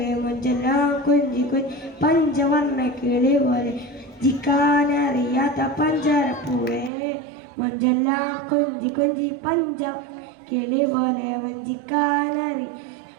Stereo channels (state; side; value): drops out; left; at 6.9 s